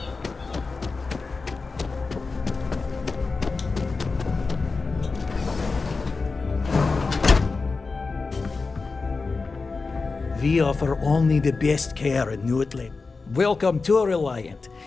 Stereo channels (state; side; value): quieter; right; 4.1 dB